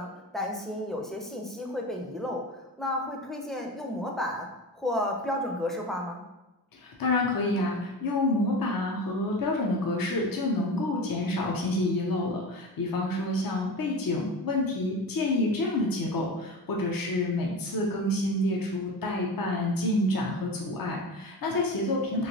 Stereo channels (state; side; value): normal; both; correlation 0.29